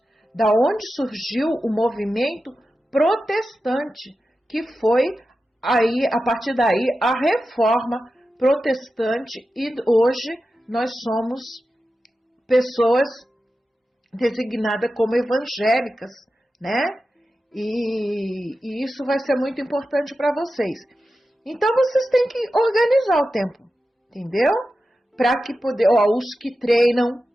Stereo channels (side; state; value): both; normal; correlation 0.92